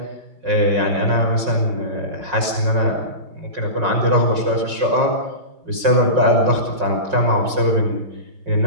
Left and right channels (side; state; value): left; late; 5.5 ms